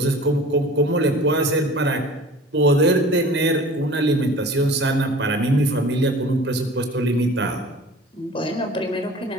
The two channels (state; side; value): normal; both; correlation 0.43